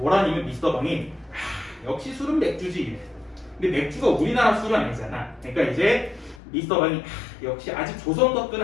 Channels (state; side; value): drops out; right; at 6.4 s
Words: 미스터 방이 역시 술은 맥주지. 근데 맥주가 우리나라 술은 아니잖아. 그러니까 이제 미스터 방이 역시 아직 조선